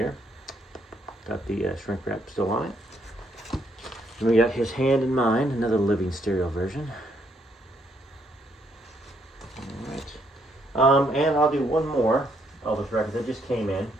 Got the shrink wrap still on it. And we got His Hand in Mine, another living stereo version. All right. And I'll do one more Elvis record that just came in.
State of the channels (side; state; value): both; normal; correlation 0.72